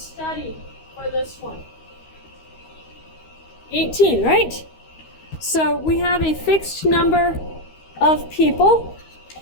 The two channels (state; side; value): late; right; 13 ms